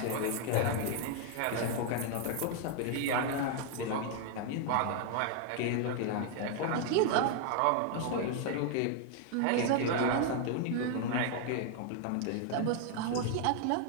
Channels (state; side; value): different; both; correlation 0.00